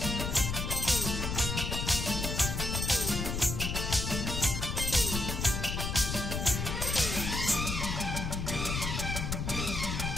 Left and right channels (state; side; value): noise; left; rumble, 2 dB below the sound